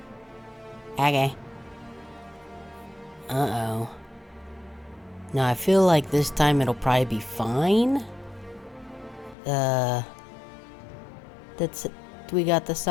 Okay. Uh-oh. Now, I feel like this time it'll probably be fine. That's it. We got the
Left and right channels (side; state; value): right; drops out; at 9.3 s